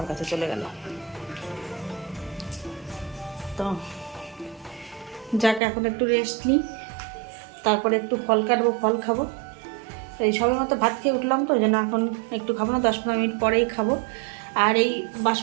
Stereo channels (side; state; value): left; drops out; at 5.6 s